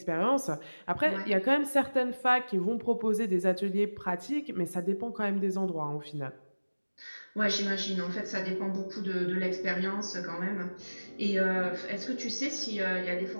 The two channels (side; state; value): both; inverted; correlation -1.00